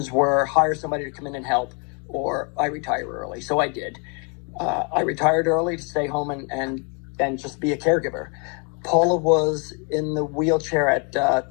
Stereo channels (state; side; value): quieter; right; 35.5 dB